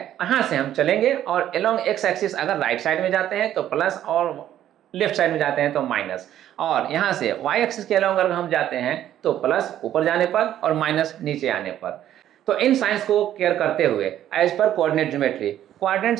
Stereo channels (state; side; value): quieter; left; 11.7 dB